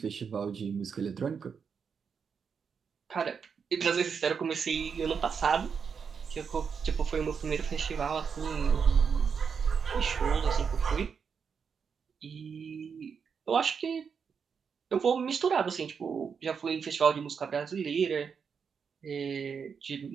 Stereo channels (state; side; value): quieter; left; 6.3 dB